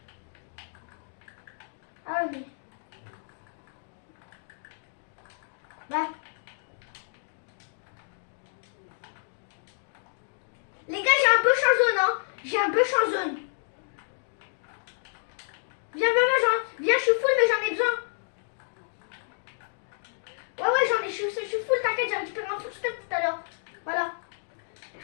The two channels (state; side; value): silent; right; digital silence